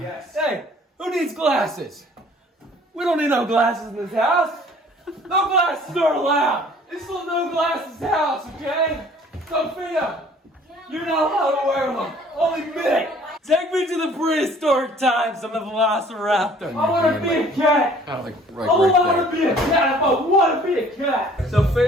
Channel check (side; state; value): both; normal; correlation 0.54